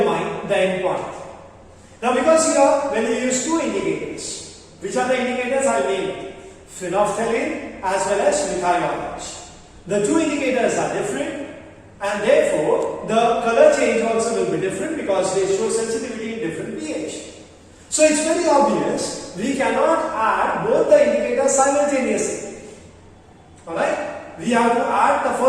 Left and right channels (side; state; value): both; identical; correlation 1.00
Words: the endpoint. Now because here when we use two indicators, which are the indicators I named? Phenolphthalein as well as methyl orange. The two indicators are different and therefore the color change also will be different because they show sensitivity in different pH. So it's very obvious we cannot add both the indicators simultaneously. Alright? We have to add the